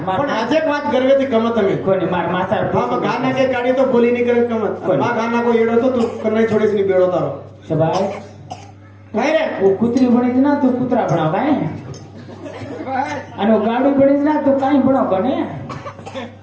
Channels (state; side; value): identical; both; correlation 1.00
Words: पण आज एक बात गर्वे ती कमत में कोणी मार मासार हाँ मैं गाना के गाड़ी तो बोली नहीं करे कमत कोण? माँ गाना को येड़ो तो तू करना ही छोड़े से नहीं बेड़ो तारो शबाय काय रे वो कुत्री बनीच ना तू कुत्रा बनाव काय आणि वो गाडी बनीच ना तू काय बनाव कने